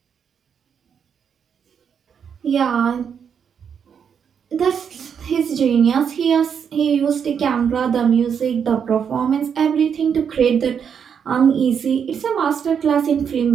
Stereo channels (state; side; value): quieter; left; 7.4 dB